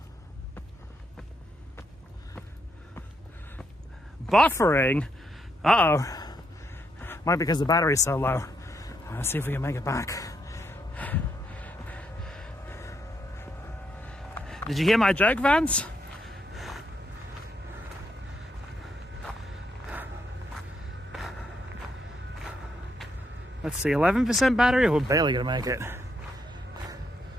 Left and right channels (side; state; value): both; normal; correlation 0.78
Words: Buffering? Uh-oh. Might be because the battery's so low. Let's see if we can make it back. Did you hear my joke, Vance? Let's see, 11% battery? We're barely gonna make it.